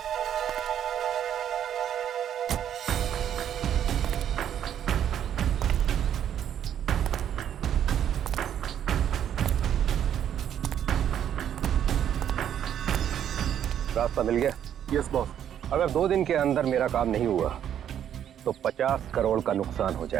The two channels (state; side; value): quieter; left; 9.8 dB